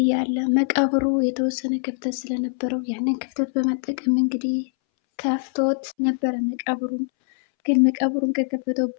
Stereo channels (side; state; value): right; silent; 63 dB below the other